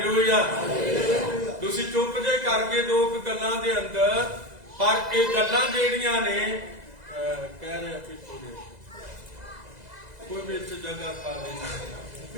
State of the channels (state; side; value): late; left; 2.0 ms